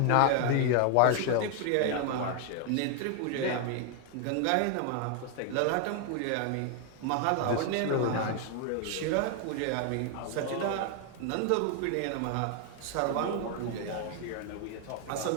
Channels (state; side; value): different; both; correlation 0.00